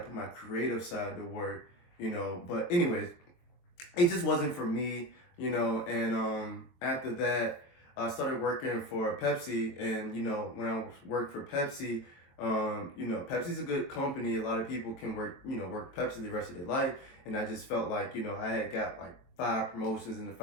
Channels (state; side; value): late; right; 23 ms